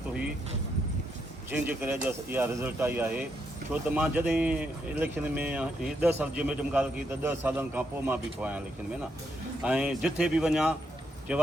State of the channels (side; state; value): both; normal; correlation 0.79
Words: हुई, जंहिंजे करे अॼु इहा रिज़ल्ट आई आहे। छो त मां जॾहिं इलेक्शन में 10 साल जी मैडम ॻाल्हि कई त 10 सालनि खां पोइ मां बीठो आहियां इलेक्शन में न, ऐं जिथे बि वञा चइबो